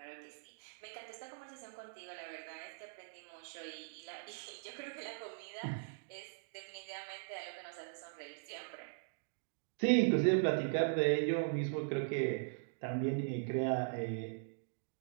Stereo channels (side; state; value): left; silent; digital silence